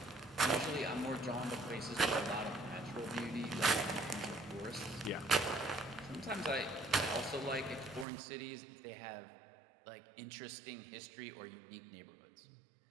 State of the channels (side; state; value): left; drops out; at 8.1 s